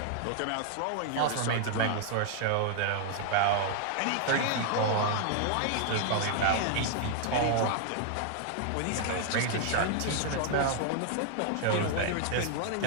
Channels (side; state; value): both; different; correlation 0.00